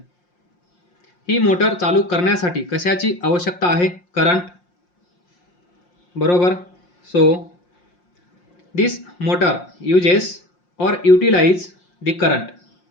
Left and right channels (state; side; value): late; right; 5.6 ms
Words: ही मोटर चालू करण्यासाठी कशाची आवश्यकता आहे? करंट, बरोबर. So this motor uses or utilize the current,